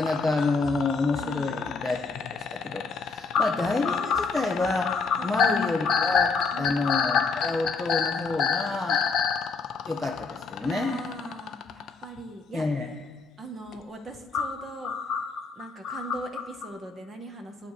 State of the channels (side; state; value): right; quieter; 4.3 dB